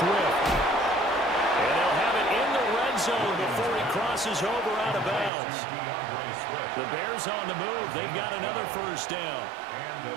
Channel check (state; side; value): drops out; left; at 5.3 s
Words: And they'll have it in the red zone before he crosses over out of bounds. The Bears on the move. They've got another 1st down.